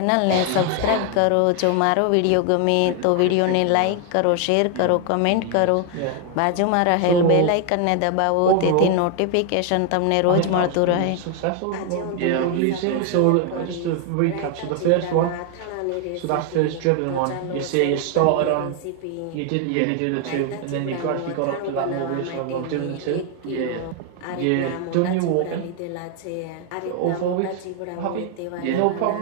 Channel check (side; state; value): both; different; correlation 0.01